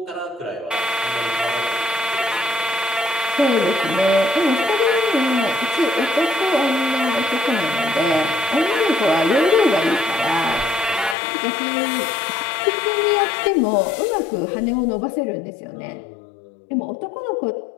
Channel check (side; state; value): right; drops out; at 11.2 s